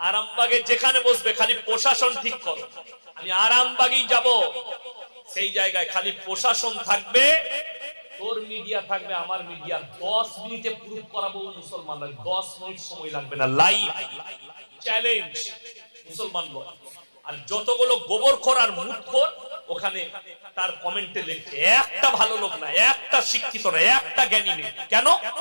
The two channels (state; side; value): inverted; both; correlation -1.00